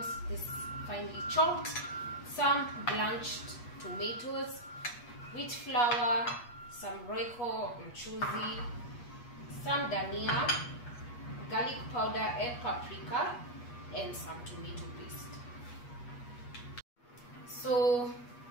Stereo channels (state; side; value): late; right; 8.3 ms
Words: this finely chopped, some blanched tomatoes, wheat flour, some royco mchuzi, some dhania, garlic powder and paprika, and some tomato paste. So